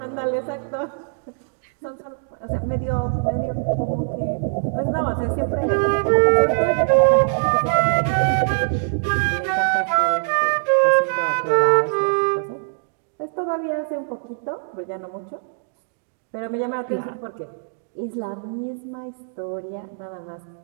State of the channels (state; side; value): silent; left; digital silence